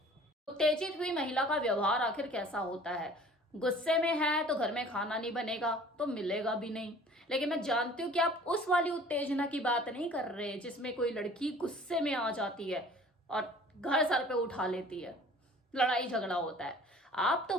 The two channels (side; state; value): both; normal; correlation 0.49